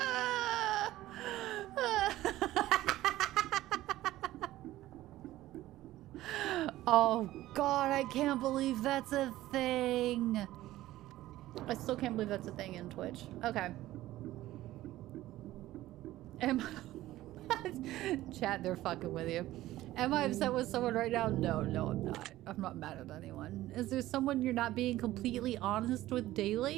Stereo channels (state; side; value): quieter; left; 15.6 dB